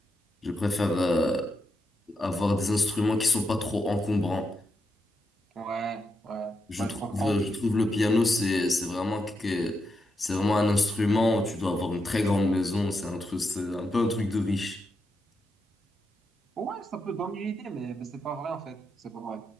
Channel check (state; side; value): normal; both; correlation 0.84